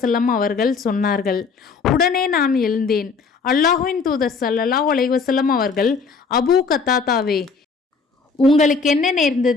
அவர்கள் சொன்னார்கள். உடனே நான் எழுந்தேன். அல்லாஹ்வின் தூதர் ஸல்லல்லாஹு அலைஹி வஸல்லம் அவர்கள் அபூ கத்தாதாவே உங்களுக்கு என்ன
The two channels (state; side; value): quieter; right; 4.9 dB